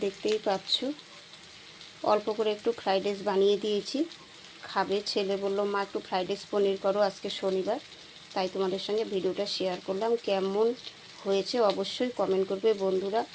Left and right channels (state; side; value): identical; both; correlation 1.00